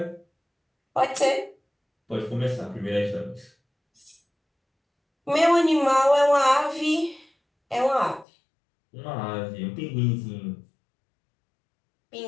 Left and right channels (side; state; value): right; drops out; at 8.2 s